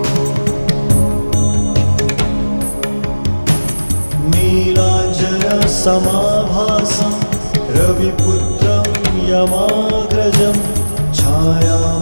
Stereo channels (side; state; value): both; inverted; correlation -1.00